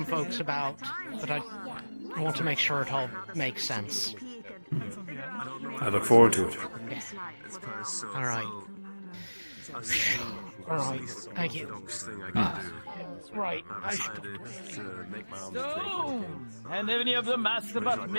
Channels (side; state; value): both; inverted; correlation -1.00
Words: folks about, but I want to make sure it all makes sense. I look forward to it. All right. All right. Thank you. Right. So, and any of them asked about